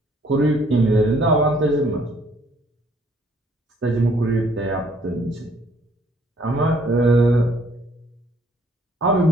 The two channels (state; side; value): normal; both; correlation 0.63